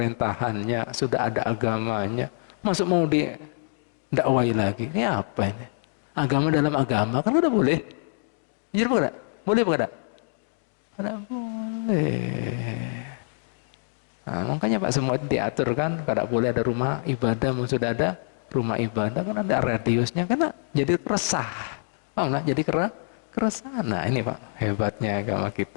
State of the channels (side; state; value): right; silent; digital silence